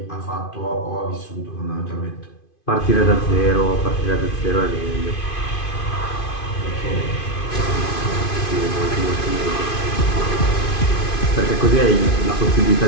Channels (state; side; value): late; right; 2.5 ms